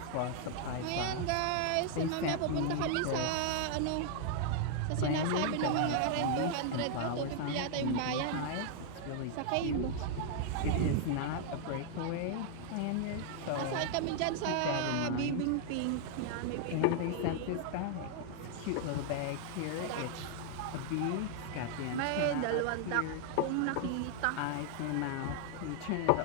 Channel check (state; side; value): different; both; correlation 0.00